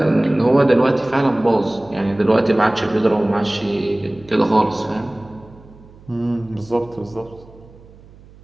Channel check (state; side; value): noise; right; hum, 23 dB below the sound